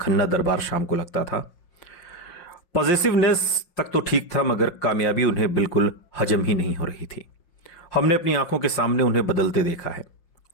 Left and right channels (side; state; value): right; late; 5.6 ms